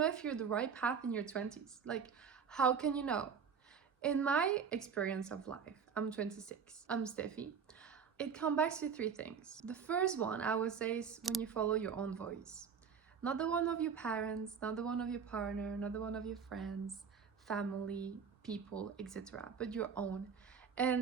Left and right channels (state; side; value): quieter; left; 6.6 dB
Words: if you're the right path in your 20s? Like, how can you know? In my experience of life, I'm 26. I'm Steffi. It comes back to three things. The first one I would say is when you follow your own voice. Not the one of your parents, not the one of your partner, not the one of your friends, family, people, etc., but your own.